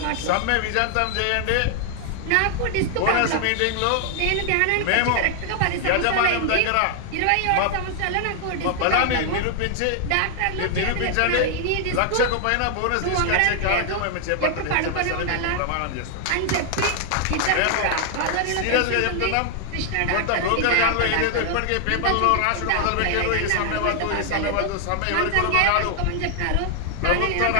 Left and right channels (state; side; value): different; both; correlation 0.00